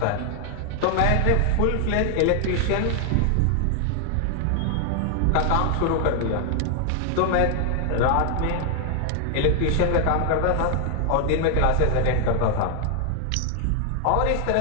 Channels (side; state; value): both; different; correlation 0.00